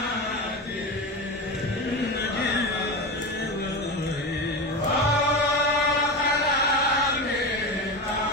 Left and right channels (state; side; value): normal; both; correlation 0.22